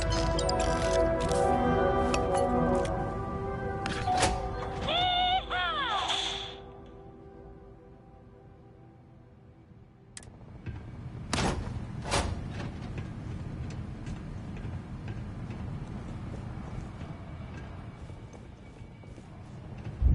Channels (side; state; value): both; identical; correlation 1.00